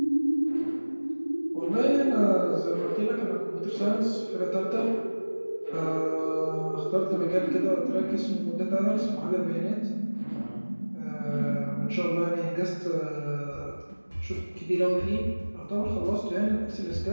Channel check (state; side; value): inverted; both; correlation -1.00